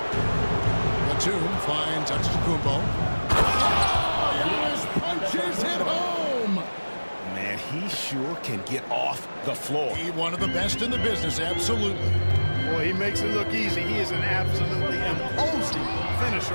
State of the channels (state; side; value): inverted; both; correlation -1.00